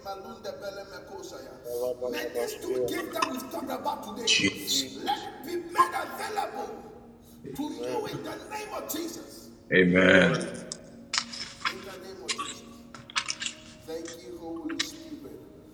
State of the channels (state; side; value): identical; both; correlation 1.00